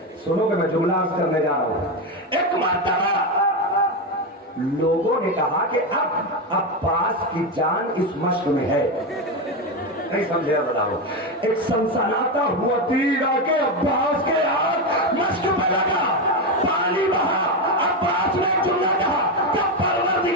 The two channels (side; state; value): both; normal; correlation 0.12